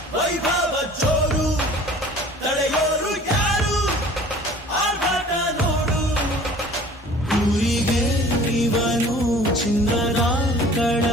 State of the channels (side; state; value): both; normal; correlation 0.48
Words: ವೈಭವ ಜೋರು ತಡೆಯೋರು ಯಾರು ಆರ್ಭಟ ನೋಡು ಊರಿಗೆ ಇವನು ಚಿನ್ನದ